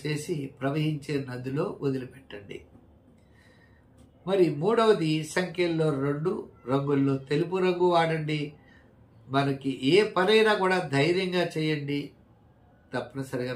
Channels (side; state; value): both; identical; correlation 1.00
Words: చేసి ప్రవహించే నదిలో వదిలిపెట్టండి. మరి మూడవది, సంఖ్యల్లో 2 రంగుల్లో తెలుపు రంగు వాడండి. మనకి ఏ పనైనా కూడా ధైర్యంగా చేయండి, తప్పనిసరిగా